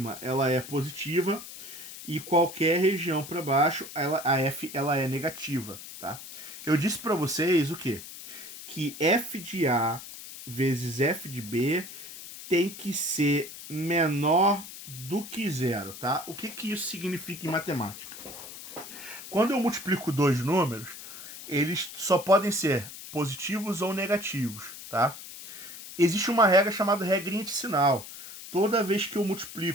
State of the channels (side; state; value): left; noise; hiss, 13 dB below the sound